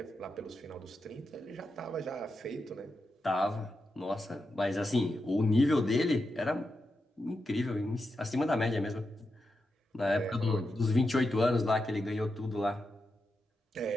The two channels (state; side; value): normal; both; correlation 0.87